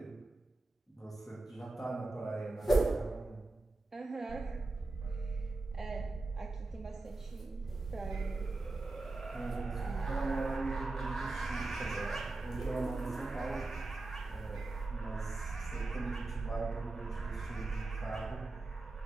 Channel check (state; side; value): quieter; left; 3.0 dB